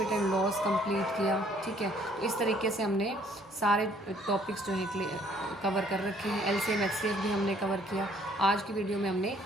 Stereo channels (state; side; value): normal; both; correlation 0.62